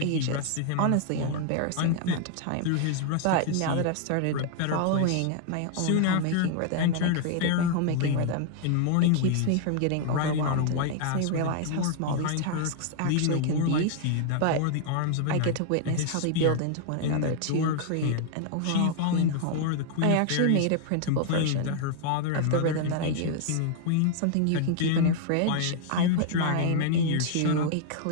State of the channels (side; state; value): both; different; correlation 0.00